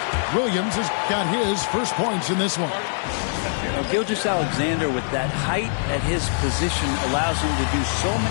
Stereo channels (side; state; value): right; silent; 57 dB below the other